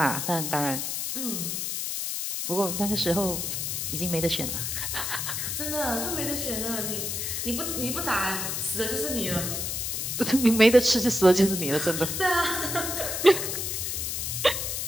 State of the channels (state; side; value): noise; left; hiss, 2 dB below the sound